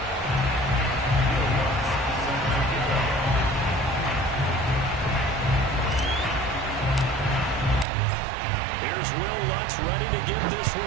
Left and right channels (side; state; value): left; drops out; at 7.9 s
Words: Ready to get this